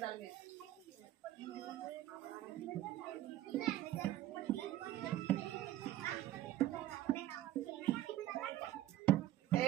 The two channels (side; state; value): left; quieter; 13.6 dB